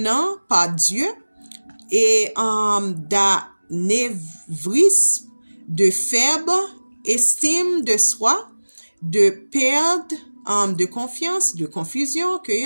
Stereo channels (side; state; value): both; inverted; correlation -1.00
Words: par Dieu et d'anévrisme, de faible estime de soi, de perte de confiance, de confusion,